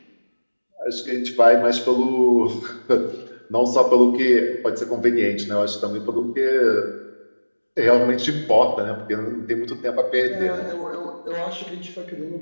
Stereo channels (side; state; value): both; inverted; correlation -1.00